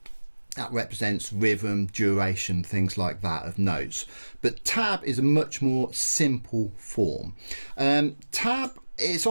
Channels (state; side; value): inverted; both; correlation -1.00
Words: that represents rhythm, duration, things like that of notes. But tab is a much more simple form. Tab, it's